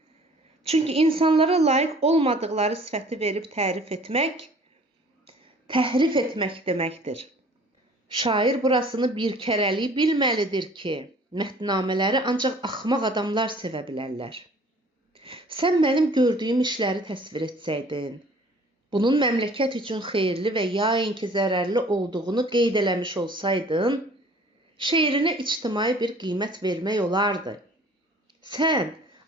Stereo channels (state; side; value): normal; both; correlation 0.51